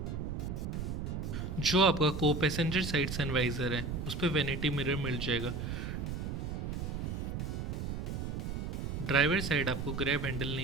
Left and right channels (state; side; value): noise; right; rumble, 3 dB below the sound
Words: जो आपका को पैसेंजर साइड सनवाइजर है उस पर वैनिटी मिरर मिल जाएगा। ड्राइवर साइड आपको ग्रैब हैंडल